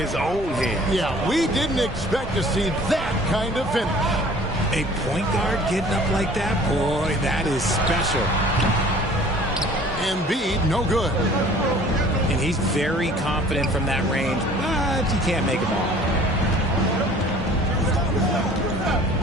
own hands. Yeah, we didn't expect to see that kind of finish. A point guard getting up like that? Boy, that is special. Embiid, no good. And he's very confident from that range, but he can't make them all.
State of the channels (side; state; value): both; normal; correlation 0.50